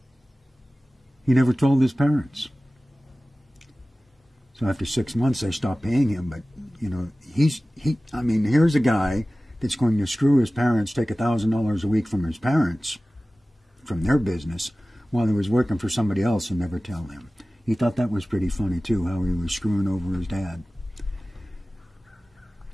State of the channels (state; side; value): normal; both; correlation 0.97